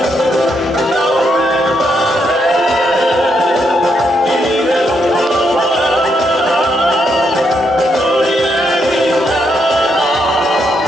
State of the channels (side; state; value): both; normal; correlation 0.78